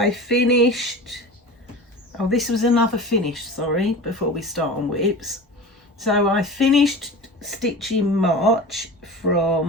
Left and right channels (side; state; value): both; normal; correlation 0.34